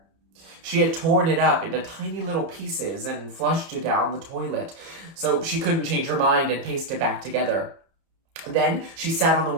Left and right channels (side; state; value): left; late; 30 ms